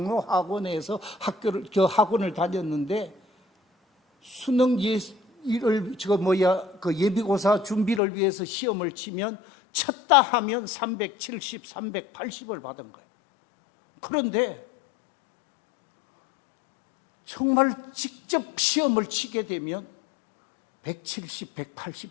학원을 다녔는데 수능 예비고사 준비를 위해서 시험을 치면 쳤다 하면 370, 380을 받은 거예요. 그런데 정말 직접 시험을 치게 되면 170,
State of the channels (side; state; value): right; drops out; at 8.0 s